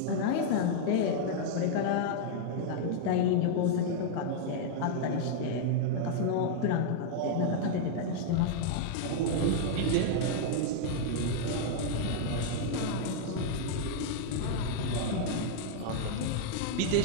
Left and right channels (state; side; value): different; both; correlation -0.01